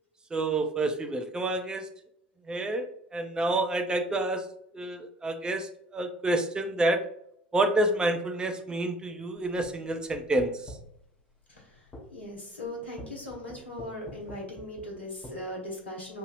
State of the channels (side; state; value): both; normal; correlation 0.54